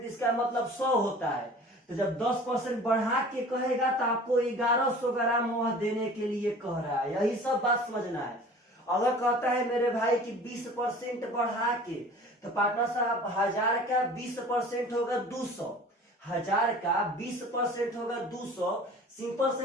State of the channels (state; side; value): normal; both; correlation 0.44